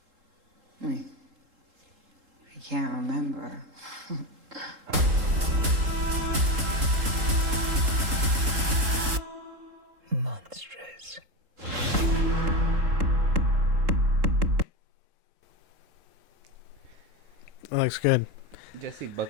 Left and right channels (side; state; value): left; late; 3.7 ms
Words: I can't remember. Monstrous. That looks good. Jesse